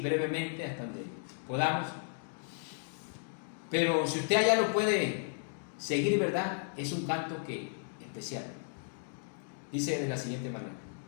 hasta donde podamos. Pero si usted allá lo puede seguir, ¿verdad?, es un canto especial. Dice de la siguiente manera:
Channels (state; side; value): silent; right; digital silence